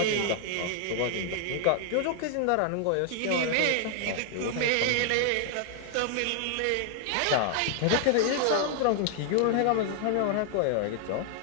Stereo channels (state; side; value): different; both; correlation 0.00